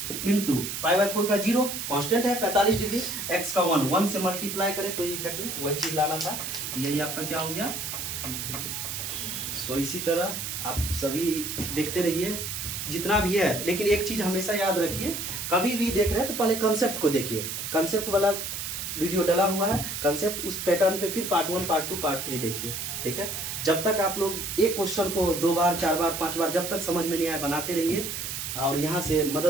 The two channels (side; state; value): right; noise; hiss, 5 dB below the sound